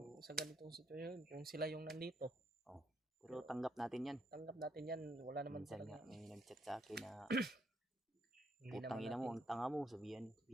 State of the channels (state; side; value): normal; both; correlation 0.74